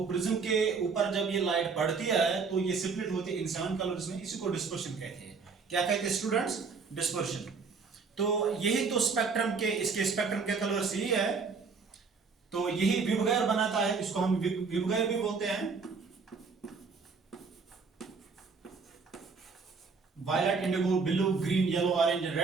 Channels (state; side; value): quieter; left; 4.9 dB